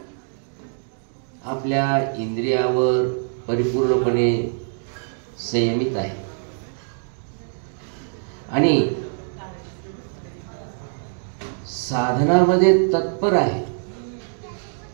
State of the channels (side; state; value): left; silent; digital silence